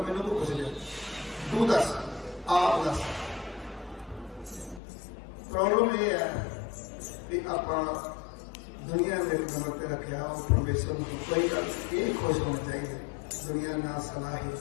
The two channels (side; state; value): right; drops out; at 4.8 s